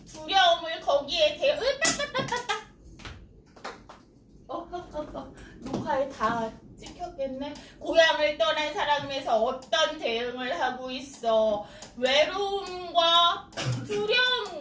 두려움을 거기에 녹화에 다 찍혔겠네. 고향을 떠난 사람에서 어떤 대응을 하고 있어? 외로움과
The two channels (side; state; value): both; identical; correlation 1.00